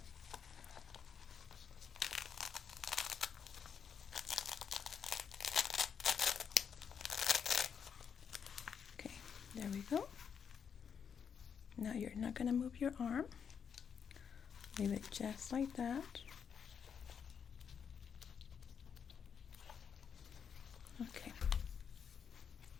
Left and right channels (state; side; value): quieter; right; 7.2 dB